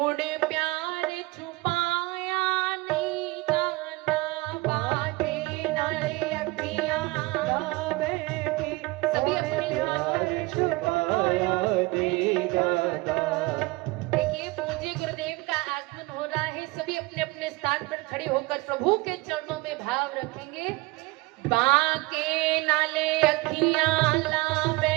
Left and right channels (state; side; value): quieter; left; 22.5 dB